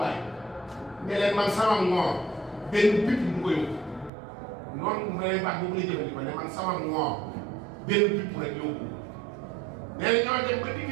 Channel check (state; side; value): drops out; left; at 4.1 s